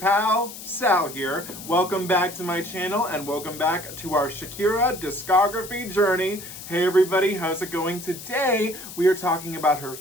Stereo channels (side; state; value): left; noise; hiss, 13 dB below the sound